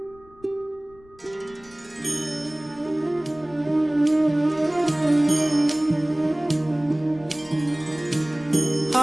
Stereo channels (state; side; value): noise; left; rumble, 26 dB below the sound